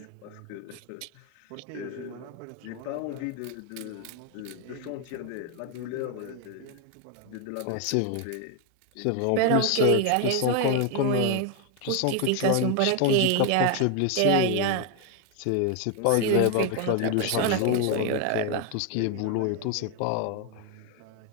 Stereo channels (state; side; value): different; both; correlation 0.01